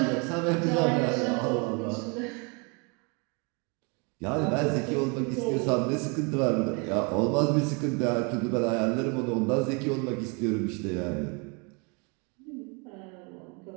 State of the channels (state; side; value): quieter; left; 32.7 dB